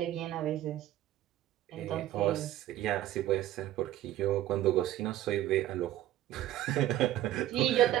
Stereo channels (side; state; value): left; quieter; 13.5 dB